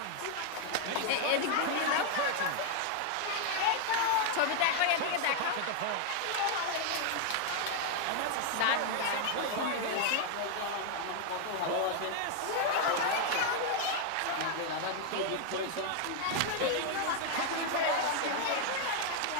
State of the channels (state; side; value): different; both; correlation 0.00